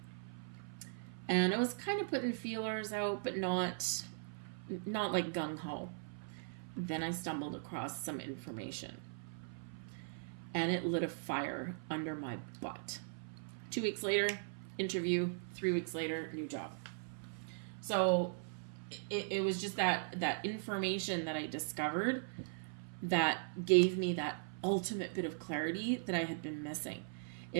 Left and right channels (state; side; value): silent; left; 51 dB below the other